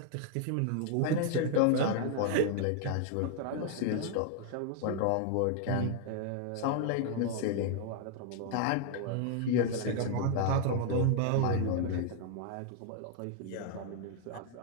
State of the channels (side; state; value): both; different; correlation 0.00